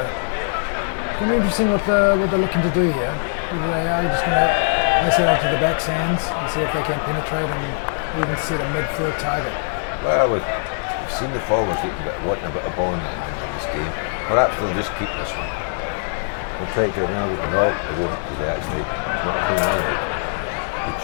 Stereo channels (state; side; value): silent; right; digital silence